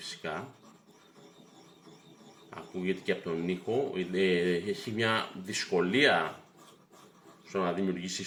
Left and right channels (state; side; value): identical; both; correlation 1.00